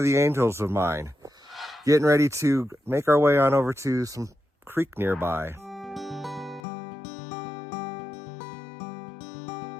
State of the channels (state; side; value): drops out; right; at 6.6 s